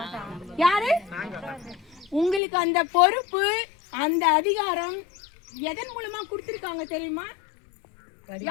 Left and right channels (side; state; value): right; drops out; at 2.4 s